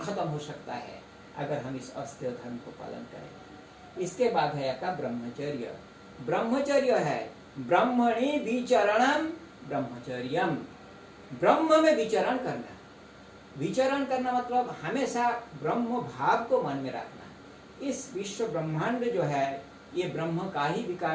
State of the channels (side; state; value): both; identical; correlation 1.00